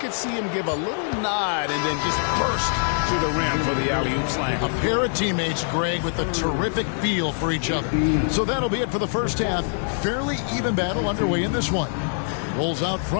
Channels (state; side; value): silent; right; digital silence